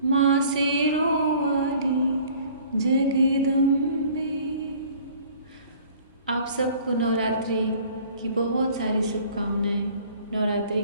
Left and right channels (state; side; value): inverted; both; correlation -0.51